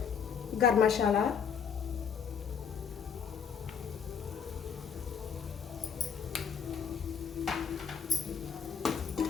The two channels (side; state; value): right; quieter; 7.1 dB